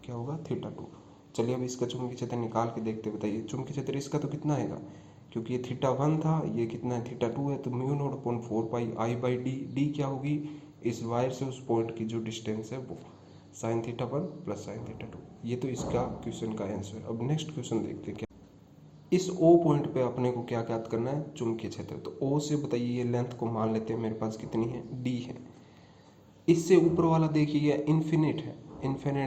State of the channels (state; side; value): identical; both; correlation 1.00